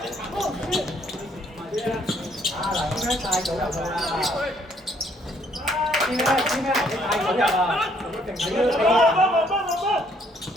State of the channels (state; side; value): normal; both; correlation 0.66